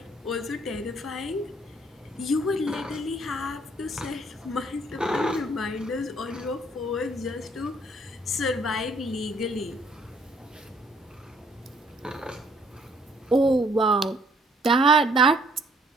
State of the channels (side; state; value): both; normal; correlation 0.64